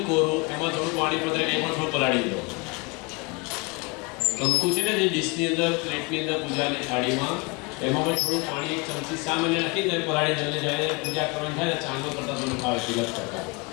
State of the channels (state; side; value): quieter; right; 28.6 dB